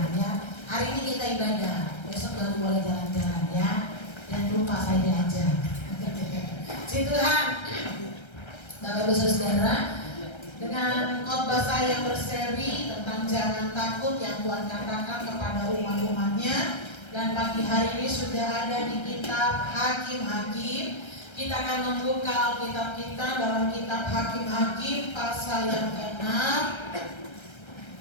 ya. Hari ini kita ibadah, besok baru boleh jalan-jalan ya. Jangan lupa saya diajak. Tuhan. Bapak Ibu Saudara, dengan khotbah saya yang berseri tentang jangan takut yang Tuhan katakan kepada umat-umatnya, dan pagi hari ini sudah ada di kitab Hakim-Hakim. Kita akan membuka Alkitab kita dalam kitab Hakim-Hakim pasal yang ke-6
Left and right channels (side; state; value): right; late; 1.3 ms